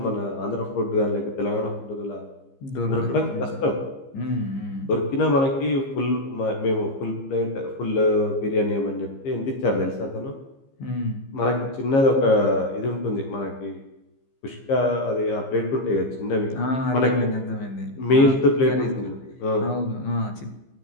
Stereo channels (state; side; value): late; right; 15 ms